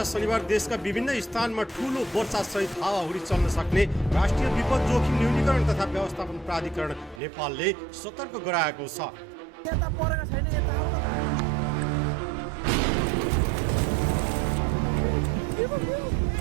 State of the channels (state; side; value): drops out; left; at 7.2 s